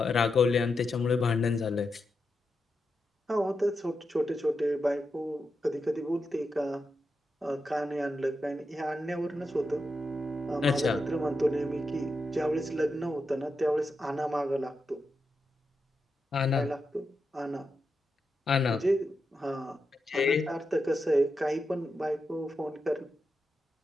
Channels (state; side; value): normal; both; correlation 0.87